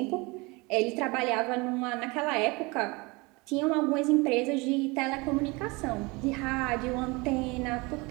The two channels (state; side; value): quieter; left; 25.9 dB